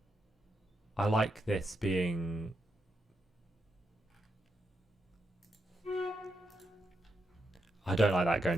I like this being... I don't like that going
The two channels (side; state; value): both; normal; correlation 0.82